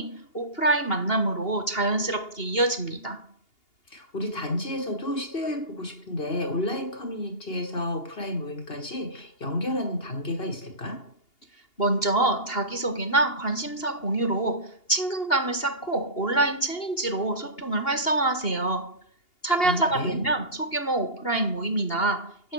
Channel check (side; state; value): right; late; 2.8 ms